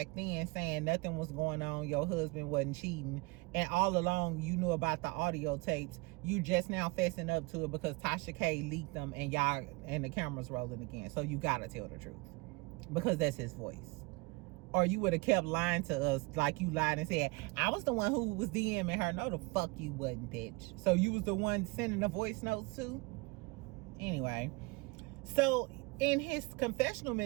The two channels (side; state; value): left; quieter; 25.2 dB